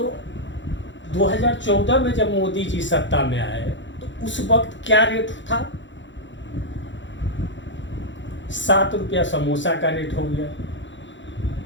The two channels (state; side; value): late; right; 0.54 ms